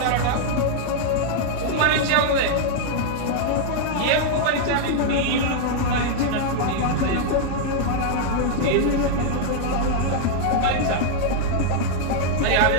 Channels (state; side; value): different; both; correlation 0.00